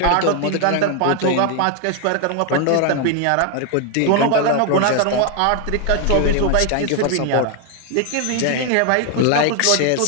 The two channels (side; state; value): both; different; correlation 0.00